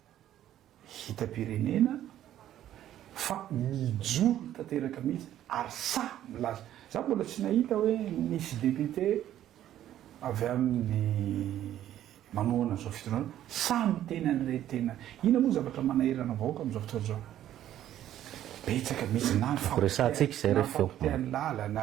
hitam-pirenena fa mijoro tanteraka mihitsy ary sa milaza za mbola tsy nahita hoe nisy député avy amin'ny manohana zao fitondrana sa mitena an'ireny tena ina moa zavatra manahirana vahoaka amin'izao fotoana zao betsaka mihitsy na ny fampitehan'ny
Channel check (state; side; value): quieter; left; 12.0 dB